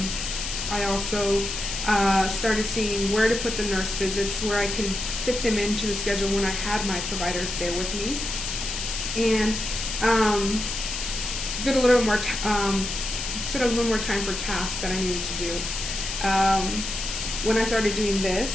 I also started seeing where to put the nurse visits, where I could fit them into the schedule when I had my providers there with me, and did a little more set a little more time for tasks that I needed to do. When I started doing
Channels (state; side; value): noise; left; hiss, 4 dB below the sound